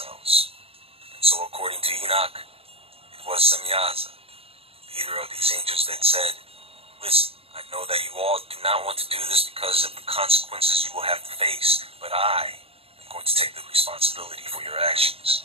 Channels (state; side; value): late; left; 0.28 ms